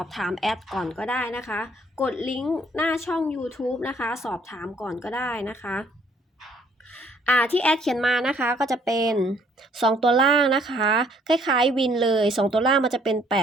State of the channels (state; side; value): normal; both; correlation 0.63